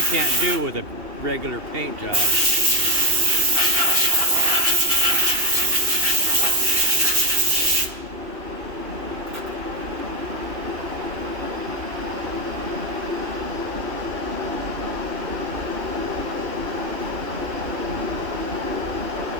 can't do with a regular paint job.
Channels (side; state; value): left; late; 2.7 ms